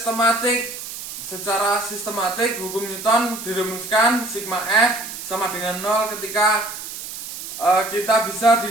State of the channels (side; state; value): right; noise; hiss, 9 dB below the sound